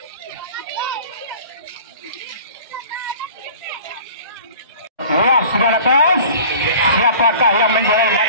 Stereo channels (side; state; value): both; inverted; correlation -0.44